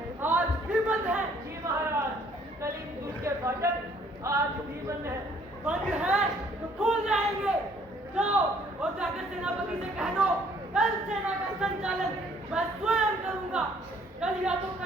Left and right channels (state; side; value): normal; both; correlation 0.61